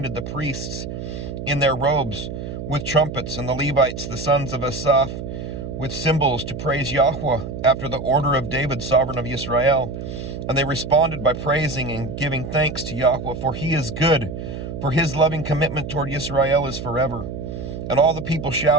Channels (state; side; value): noise; right; hum, 7 dB below the sound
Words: the priests in their robes with trumpets, and the Levites, the sons of Asaph, with cymbals to praise Yahweh after the order of David, sovereign of Israel. And they responded by praising and giving thanks to Yahweh, for he is good, for his loving commitment toward Israel is forever. And all the people